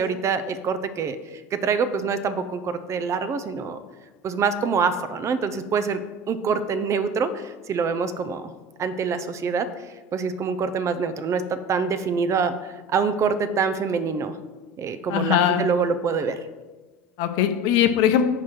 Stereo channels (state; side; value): normal; both; correlation 0.35